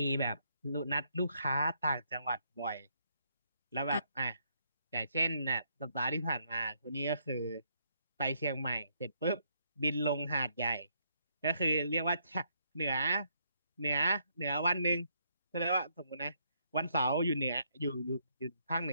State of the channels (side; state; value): both; inverted; correlation -0.73